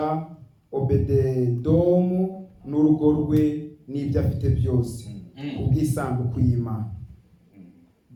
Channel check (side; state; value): both; identical; correlation 1.00